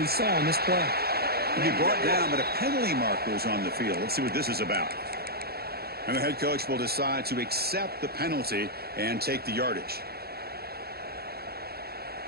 saw in this play. He brought down, but a penalty marker is on the field. Let's see what this is about. And the head coach will decide to accept the penalty and take the yardage.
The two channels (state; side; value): late; left; 0.46 ms